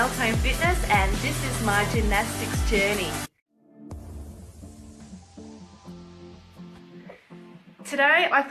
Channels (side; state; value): both; identical; correlation 1.00